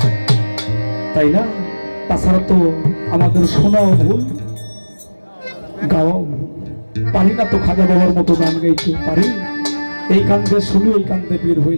তাই না? তাছাড়া তো আমাদের শোনাও ভুল, গাওয়াও ভুল। পারি না তো খাজা বাবার মতো গান গাইতে পারি, এই কান্দে শুনি ওই কান্দে বের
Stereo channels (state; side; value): inverted; both; correlation -1.00